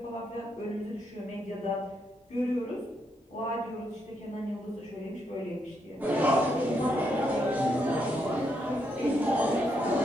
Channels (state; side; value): normal; both; correlation 0.78